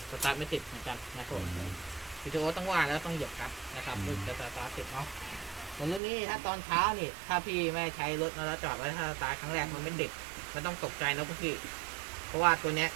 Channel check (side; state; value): left; drops out; at 6.0 s